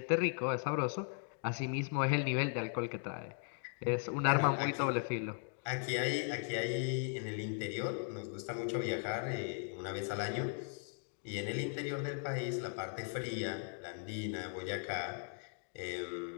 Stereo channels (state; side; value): silent; right; 52 dB below the other